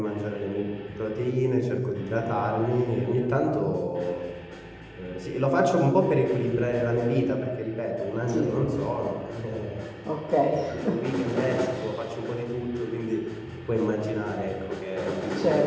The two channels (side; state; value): both; identical; correlation 1.00